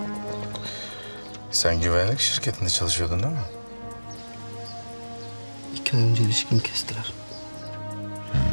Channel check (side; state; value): both; inverted; correlation -1.00